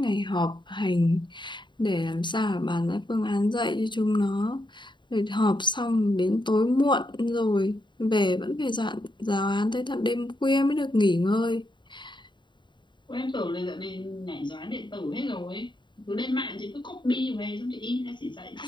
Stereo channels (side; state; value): right; late; 0.23 ms